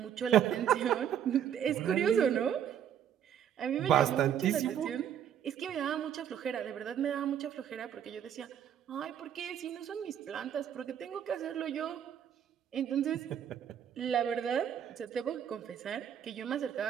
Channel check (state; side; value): quieter; left; 9.4 dB